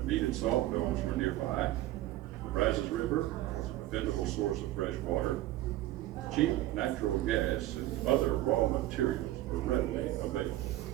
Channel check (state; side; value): quieter; left; 15.4 dB